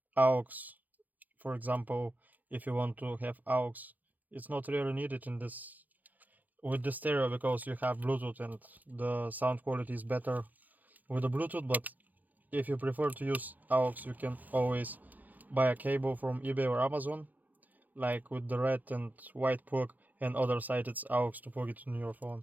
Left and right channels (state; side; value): late; left; 0.082 ms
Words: aux. For example, if you want to have aux, it's not really needed in this with the stereo because you have Bluetooth and the sound quality is better with the Bluetooth. But if you prefer to use aux, you can always buy a cable from eBay or Amazon, like with the red and white plug, and other side it's aux to plug it in your